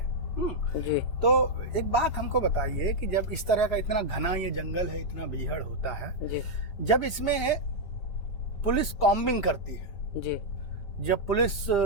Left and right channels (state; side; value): late; right; 6.6 ms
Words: जी, तो एक बात हमको बताइए कि जब इस तरह का इतना घना ये जंगल है, इतना बीहड़ होता है, जी, जब इसमें पुलिस कॉम्बिंग करती है, जी, जब पुलिस